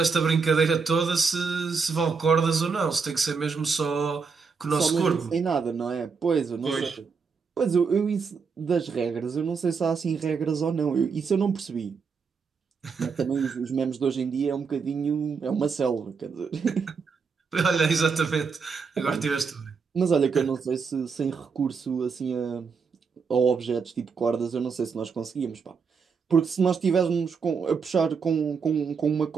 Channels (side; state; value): left; quieter; 5.4 dB